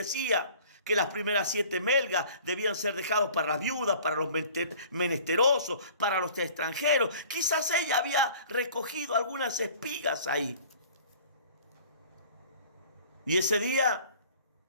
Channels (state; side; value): inverted; both; correlation -0.49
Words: que las primeras 7 melgas debían ser dejados para las viudas, para los menesterosos, para los extranjeros. Quizás ella había recogido algunas espigas ahí. Y ese día